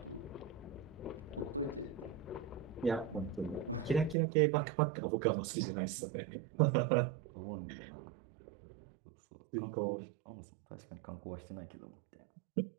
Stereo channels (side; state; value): left; drops out; at 4.2 s